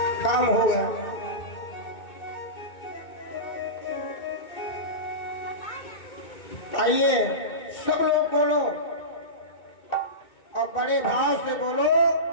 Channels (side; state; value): right; late; 2.2 ms